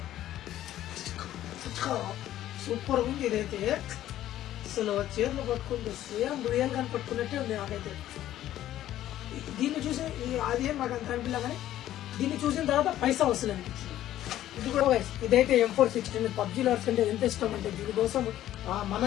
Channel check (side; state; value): right; quieter; 13.0 dB